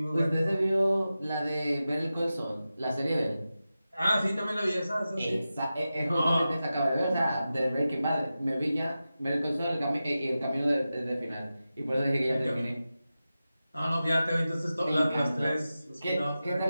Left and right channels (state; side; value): inverted; both; correlation -0.93